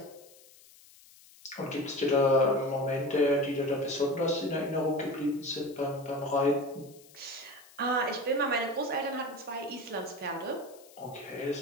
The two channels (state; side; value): noise; left; hiss, 24 dB below the sound